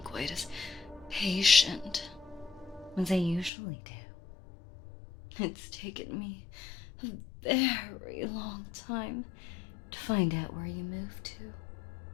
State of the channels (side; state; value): right; drops out; at 3.5 s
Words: quite as patient as I usually do. It's taken me a very long time to find out where you moved to.